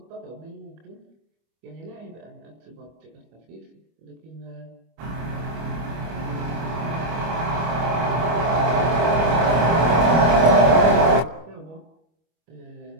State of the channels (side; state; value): left; late; 25 ms